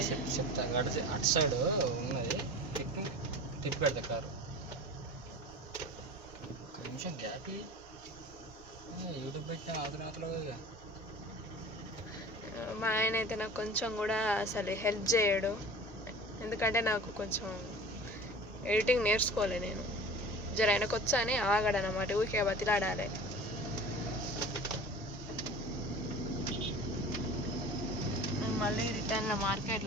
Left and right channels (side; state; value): both; normal; correlation 0.38